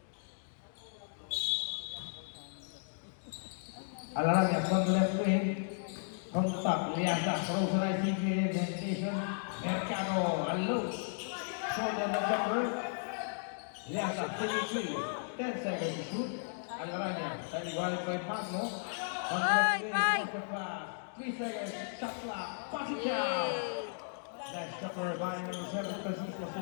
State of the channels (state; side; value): silent; right; digital silence